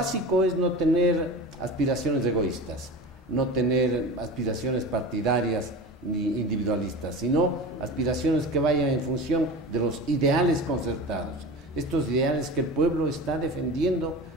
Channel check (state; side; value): normal; both; correlation 0.32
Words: es no tener aspiraciones egoístas, no tener aspiraciones partidarias ni individualistas, sino aspiraciones que vayan en función de los ideales concertados, estos ideales que el pueblo está defendiendo